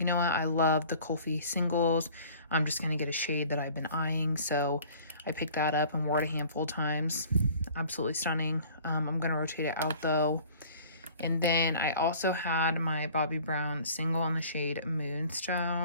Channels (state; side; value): inverted; both; correlation -0.49